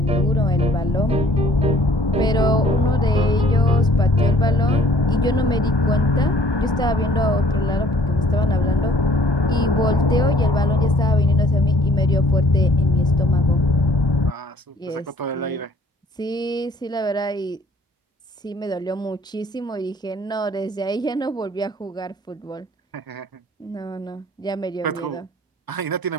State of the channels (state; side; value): normal; both; correlation 0.56